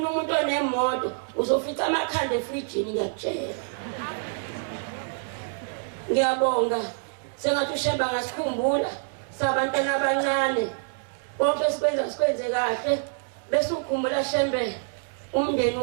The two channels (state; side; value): silent; left; 60 dB below the other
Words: umuntu onemoto uzofica amakhanda efrijini ngiyakutshela. Ngiyabonga sengathi ushemba ngasikhumbula sabantwana abancane konke sikwenze kahle bese ukhumbula shembe umndeni